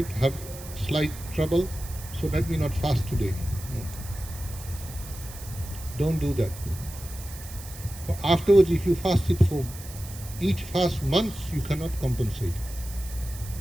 have slight trouble, so let me not fast today. No. Don't do that. For afterwards, if you fast it for each fast months, you cannot compensate.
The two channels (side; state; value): right; noise; hiss, 15 dB below the sound